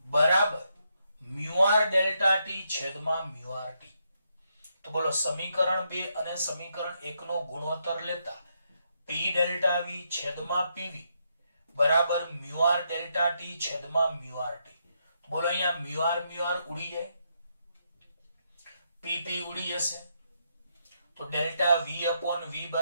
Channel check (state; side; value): inverted; both; correlation -0.79